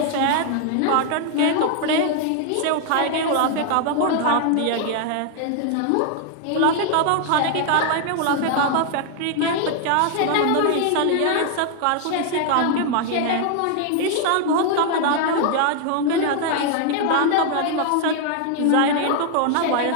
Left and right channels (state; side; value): different; both; correlation 0.00